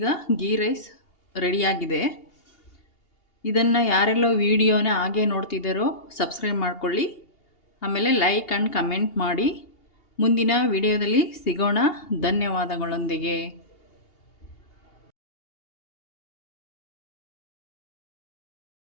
ಗೀ ರೈಸ್ ರೆಡಿಯಾಗಿದೆ. ಇದನ್ನು ಯಾರೆಲ್ಲ ವಿಡಿಯೋನ ಹಾಗೆ ನೋಡ್ತಿದ್ದಾರೋ ಸಬ್ಸ್ಕ್ರೈಬ್ ಮಾಡ್ಕೊಳ್ಳಿ. ಆಮೇಲೆ ಲೈಕ್ ಆ್ಯಂಡ್ ಕಮೆಂಟ್ ಮಾಡಿ. ಮುಂದಿನ ವಿಡಿಯೋದಲ್ಲಿ ಸಿಗೋಣ. ಧನ್ಯವಾದಗಳೊಂದಿಗೆ.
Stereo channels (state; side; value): late; right; 2.8 ms